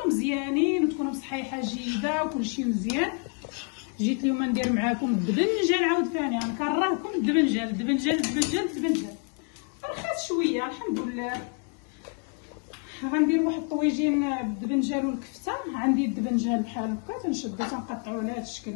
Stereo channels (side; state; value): right; quieter; 38.4 dB